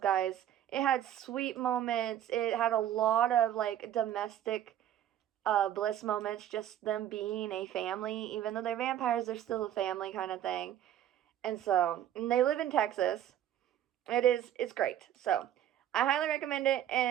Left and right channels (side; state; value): left; quieter; 11.2 dB